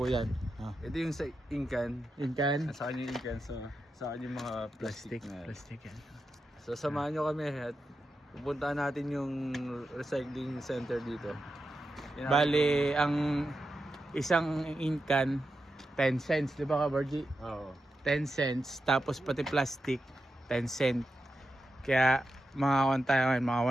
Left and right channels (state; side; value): normal; both; correlation 0.89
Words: yan. Ito yung sa Incan. Incan? Sa kanya yung Incan. Sa kanya yung mga plastic. Plastic yan. So samahan nyo kami at pupuntahan natin yung recycling center dito. Bali, ang isang Incan 10 cents, di ba ka Borgie? Oo. 10 cents, tapos pati plastic 10 cent. Kaya mga tayo ngayon, mga